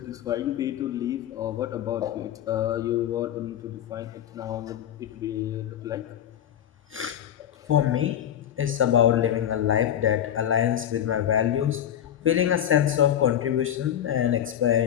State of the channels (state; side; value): quieter; right; 10.4 dB